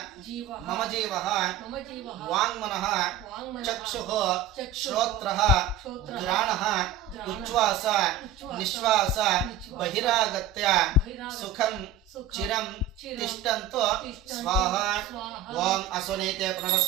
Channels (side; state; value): left; quieter; 7.7 dB